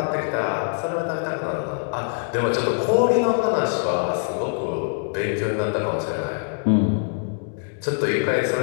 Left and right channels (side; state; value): right; silent; 63 dB below the other